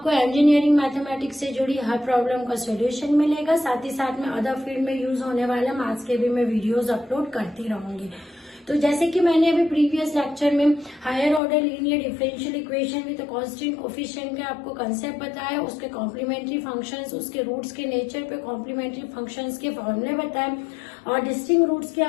engineering mathematics से जुड़ी हर problem का solution मिलेगा। साथ ही साथ में अदर फील्ड में यूज होने वाले मैथ्स के भी मैं वीडियोस अपलोड करती रहूंगी। तो जैसे कि मैंने अभी प्रीवियस लेक्चर में higher order linear differential equation with constant coefficient के आपको कंसेप्ट बताया, उसके कॉम्प्लीमेंट्री फंक्शंस, उसके रूट्स के नेचर पे कॉम्प्लीमेंट्री फंक्शंस के फॉर्मूले बताए और डिस्टिंक्ट रूट्स के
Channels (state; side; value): drops out; right; at 11.4 s